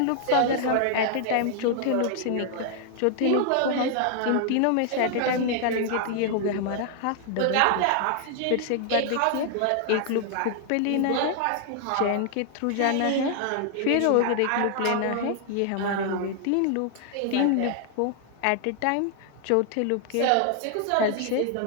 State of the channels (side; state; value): both; different; correlation 0.00